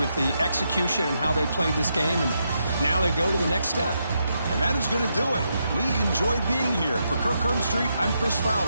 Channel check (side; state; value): both; inverted; correlation -0.81